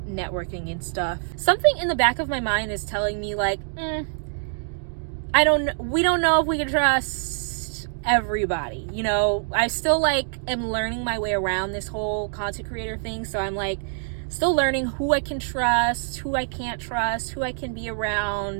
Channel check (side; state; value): left; silent; digital silence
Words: networking and stuff. Something in the back of my mind is telling me like, we don't know if we can trust everybody. You know, I still like am learning my way around this whole content creator thing. So I'm like still learning who I can trust, who I can't trust, who I can be